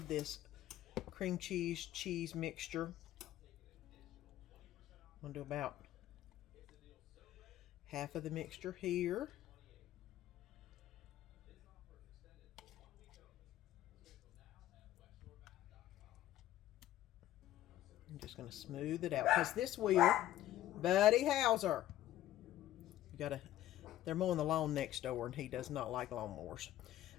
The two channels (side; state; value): right; quieter; 13.5 dB